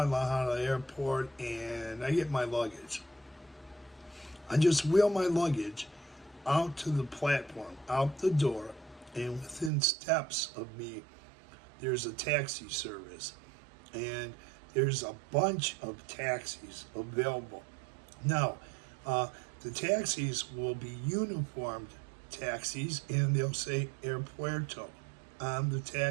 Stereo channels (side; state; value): left; drops out; at 9.7 s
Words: airport and I get my luggage, I just wheel my luggage out to the platform, out the door, and within steps of me, there's a taxi service. And there's a bunch of taxis available. Now, the taxis will be uniformed taxis, and they'll say Airpuerto on the